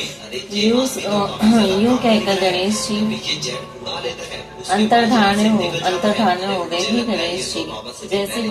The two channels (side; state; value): both; identical; correlation 1.00